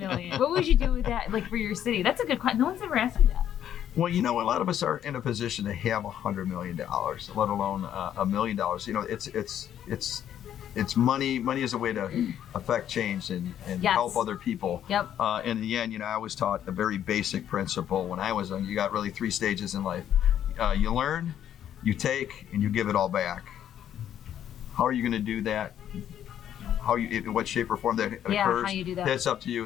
What would you do with that? Like for your city? That's a good question. No one's ever asked me that. Well, a lot of us are in a position to have $100 million, let alone $1 million. It's it's money. Money is a way to affect change and Yes. help other people. Yep. In the end, I was taught a very basic principle when I was young. You got really 3 stages in life. You learn, you take, and you give it all back. How are you going to do that? In what shape or form that occurs? How you do that. That's up to you,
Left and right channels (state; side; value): quieter; right; 10.3 dB